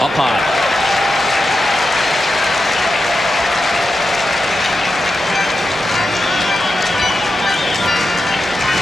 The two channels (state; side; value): normal; both; correlation 0.89